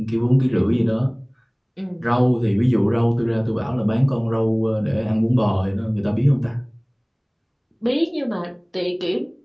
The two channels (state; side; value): identical; both; correlation 1.00